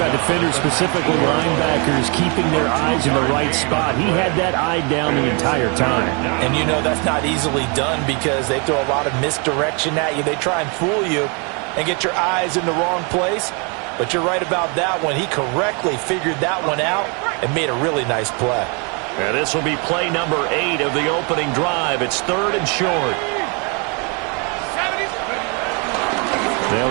defenders, specifically linebackers, keeping their eyes in the right spot, he had that eye down the entire time. And you know that's not easily done because they throw a lot of misdirection at you. They try and fool you and get your eyes in the wrong place. But you're right about that one. He correctly figured that one out and made a really nice play. And this will be play number 8 of the opening drive. It's 3rd and short.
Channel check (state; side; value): quieter; left; 33.8 dB